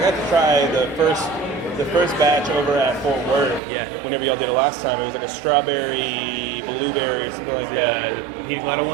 got to try the first batch over at Fort Worth. Yeah. Whenever y'all did it last time, it was like a strawberry, blueberry, something like that. the pina colada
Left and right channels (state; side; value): drops out; left; at 3.6 s